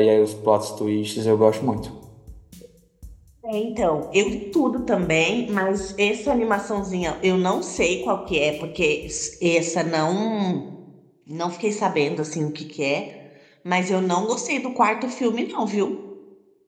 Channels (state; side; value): identical; both; correlation 1.00